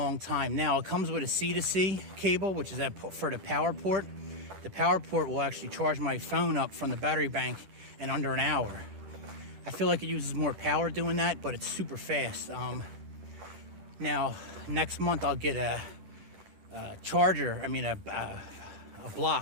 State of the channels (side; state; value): left; late; 10 ms